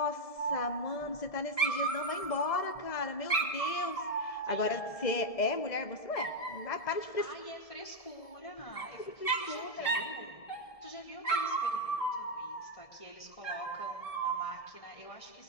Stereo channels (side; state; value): right; late; 1.7 ms